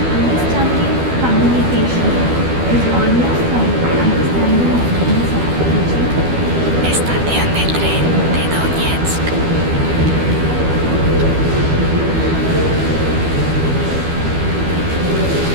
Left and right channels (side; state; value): left; late; 12 ms